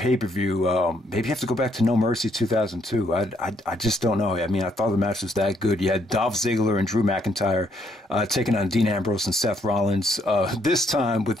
Maybe you have to go back to No Mercy 2002. I just don't know. I mean, I thought the match was that good. You had Dolph Ziggler and Drew McIntyre taking on Dean Ambrose and Seth Rollins, this time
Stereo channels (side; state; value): both; normal; correlation 0.71